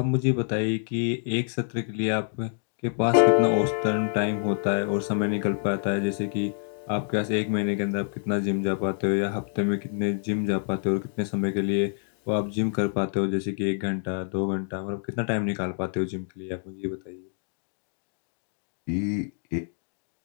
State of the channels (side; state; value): right; silent; digital silence